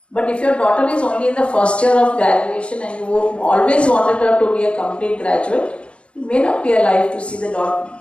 But if your daughter is only in the first year of graduation and you always wanted her to be a complete graduate, you may not be alive to see the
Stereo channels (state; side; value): late; right; 0.059 ms